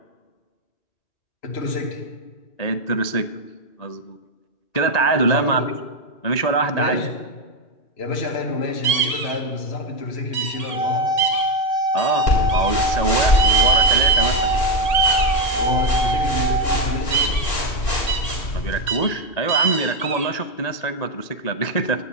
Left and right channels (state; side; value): late; right; 1.9 ms